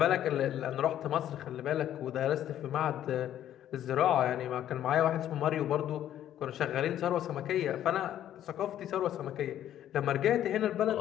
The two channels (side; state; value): right; quieter; 11.4 dB